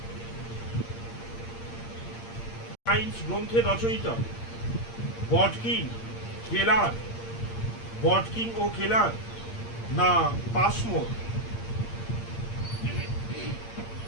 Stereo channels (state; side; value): late; right; 8.7 ms